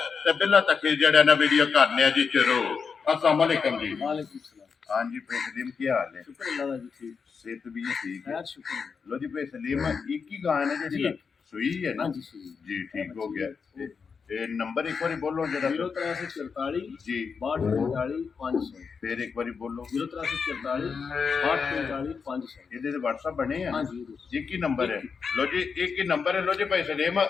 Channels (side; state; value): right; quieter; 5.7 dB